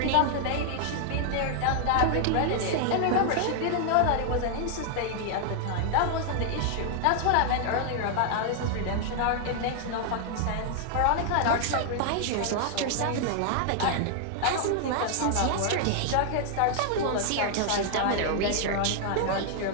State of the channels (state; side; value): different; both; correlation -0.01